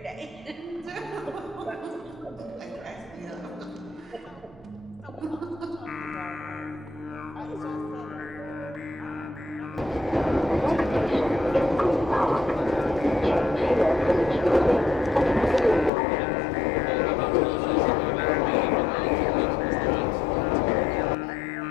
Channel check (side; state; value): right; drops out; at 15.9 s